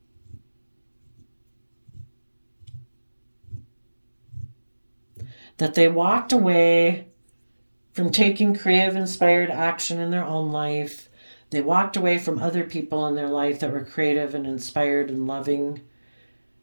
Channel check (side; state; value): both; inverted; correlation -1.00